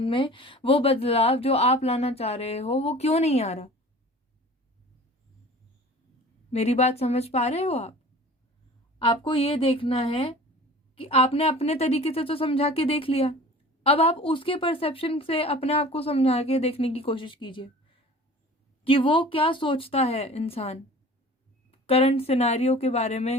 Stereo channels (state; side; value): normal; both; correlation 0.43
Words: में वो बदलाव जो आप लाना चाह रहे हो वो क्यों नहीं आ रहा। मेरी बात समझ पा रहे हो आप? आपको ये देखना है कि आपने अपने तरीके से तो समझा के देख लिया, अब आप उसके परसेप्शन से अपने आप को समझा के देखने की कोशिश कीजिए कि वो क्या सोचता है इंसान करंट सिनेरियो के बारे